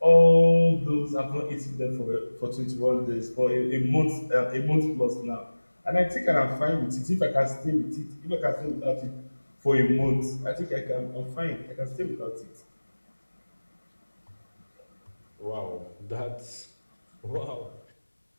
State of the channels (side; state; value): both; inverted; correlation -1.00